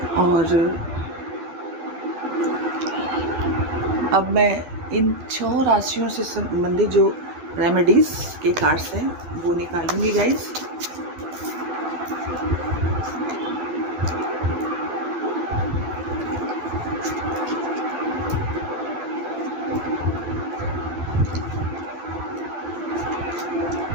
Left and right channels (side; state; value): left; late; 12 ms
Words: और अब मैं इन 6 राशियों से संबंधित जो रेमेडीज़ के कार्ड्स हैं वो निकालूंगी गाइस।